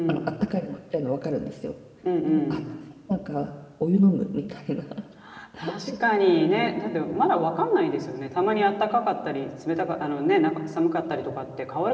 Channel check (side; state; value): both; identical; correlation 1.00